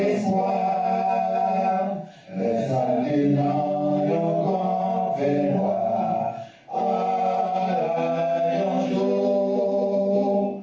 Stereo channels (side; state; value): both; identical; correlation 1.00